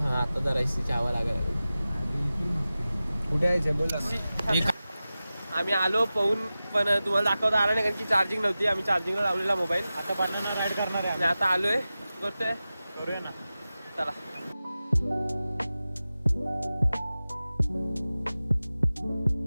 आता जरा एसीची हवा लागायला. कुठे यायचं बोला ना. आम्ही आलो पाहून, पण तुम्हाला दाखवता आला नाही कारण की चार्जिंग नव्हती. आम्ही चार्जिंगला लावलेला मोबाईल. आता बनाना राईड करणार आहे आणि आता आलोय, करतोय. करूया ना. चला.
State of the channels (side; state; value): both; inverted; correlation -0.95